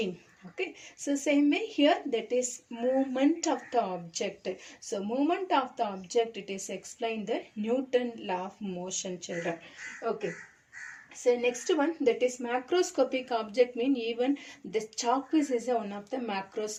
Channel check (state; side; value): identical; both; correlation 1.00